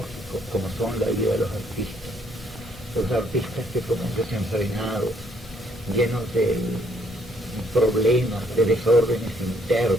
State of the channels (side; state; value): both; normal; correlation 0.67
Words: como son la vida de los artistas que fueron desenfrenados, llenos de problemas, de desórdenes